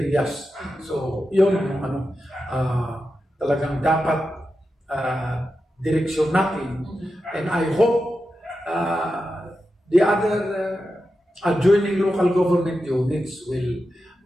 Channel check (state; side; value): normal; both; correlation 0.90